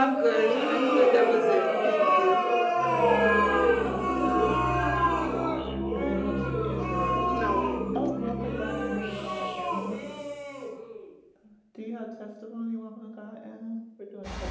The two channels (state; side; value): identical; both; correlation 1.00